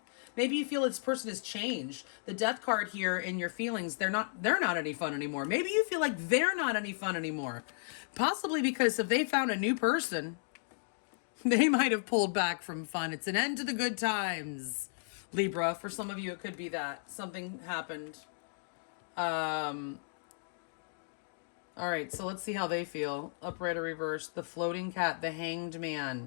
Maybe you feel this person has changed. The death card here in your feelings, they're not any fun anymore. Maybe you feel like they're not any fun anymore. Possibly because if they found a new person, they might have pulled back from fun. It's an end to the good times, Libra. For some of you, it could be that. Something happened. All right, so let's see how they feel. Upright or reverse. The floating cat, the hanged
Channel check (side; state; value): right; silent; digital silence